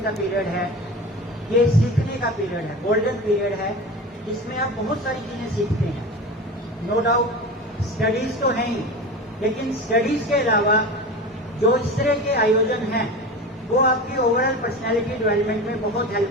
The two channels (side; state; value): both; normal; correlation 0.30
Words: का पीरियड है, ये सीखने का पीरियड है, गोल्डन पीरियड है, जिसमें आप बहुत सारी चीजें सीखते हैं। नो डाउट स्टडीज तो हैं ही, लेकिन स्टडीज के अलावा जो इस तरह के आयोजन हैं वो आपकी ओवरऑल पर्सनैलिटी डेवलपमेंट में बहुत